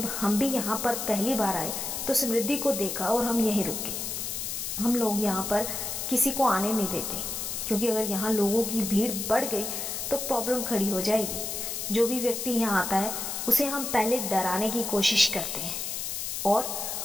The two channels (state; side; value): noise; left; hiss, 4 dB below the sound